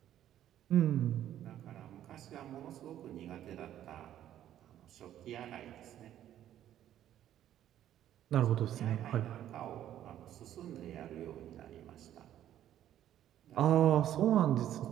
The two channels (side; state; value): left; quieter; 11.6 dB